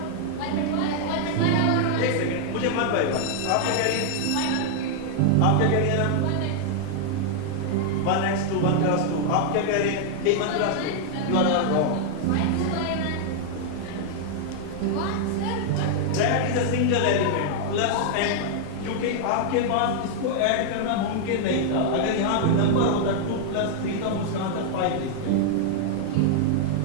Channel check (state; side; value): different; both; correlation -0.01